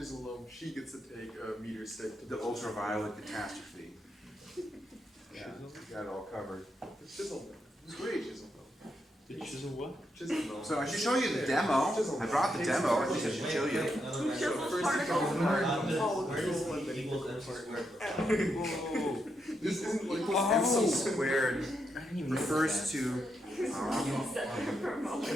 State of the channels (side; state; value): both; normal; correlation 0.82